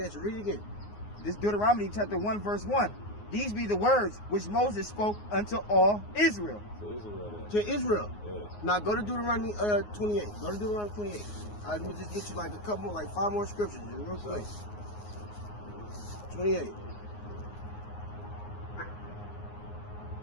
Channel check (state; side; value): late; right; 9.6 ms